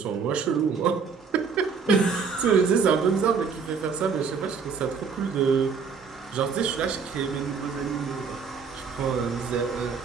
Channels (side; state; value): left; quieter; 5.7 dB